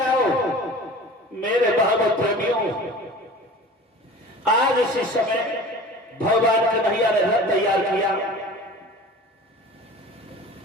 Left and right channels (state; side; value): normal; both; correlation 0.40